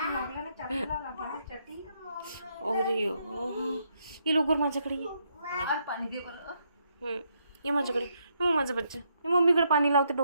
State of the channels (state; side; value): inverted; both; correlation -0.76